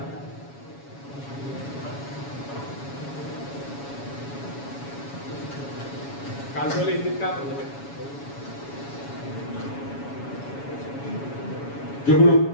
काजूला हिंदीत काय म्हणतात? जुगनू.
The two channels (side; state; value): right; late; 7.2 ms